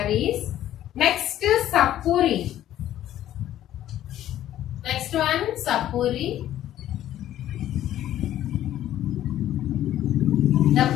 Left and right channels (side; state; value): right; quieter; 12.5 dB